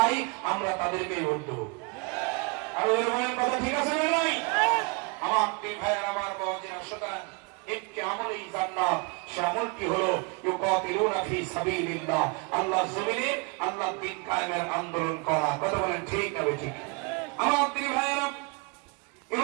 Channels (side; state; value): left; quieter; 31.3 dB